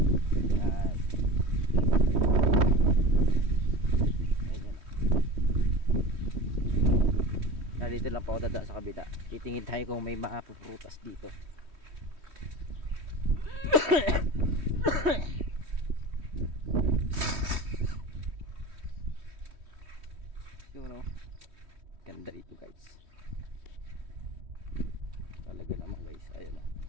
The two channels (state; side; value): late; left; 3.1 ms